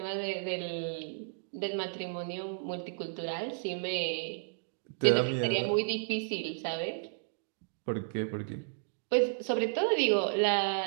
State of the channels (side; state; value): left; silent; digital silence